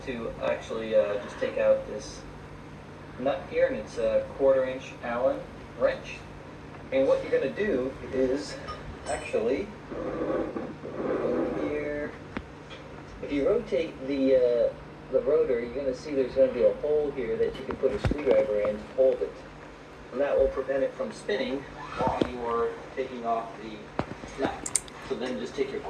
to actually just take out this nut here, and it's a 1/4-inch Allen wrench. And what you're going to do is actually over here, if you rotate the rotor, you're going to see there's going to be a hole here that you can put a screwdriver in to hold it, and that will prevent it from spinning while you're taking off the nut. So then just take your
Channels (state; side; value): identical; both; correlation 1.00